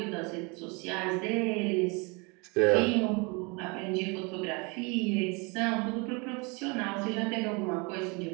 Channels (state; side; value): quieter; left; 29.9 dB